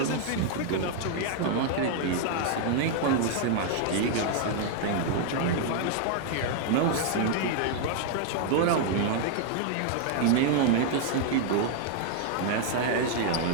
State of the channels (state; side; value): different; both; correlation 0.00